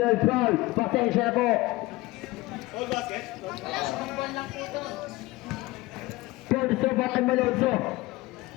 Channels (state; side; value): quieter; right; 20.1 dB